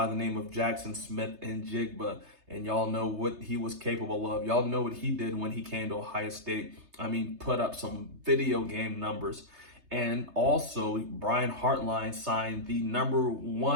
the name of Jackson Smith-Njigba. And y'all know what he was capable of. Y'all know what he did when he came to Ohio State. I mean, put up some video game numbers. And also, Brian Hartline signed the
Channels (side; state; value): left; late; 3.3 ms